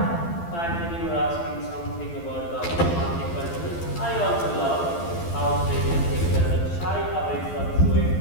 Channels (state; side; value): late; right; 12 ms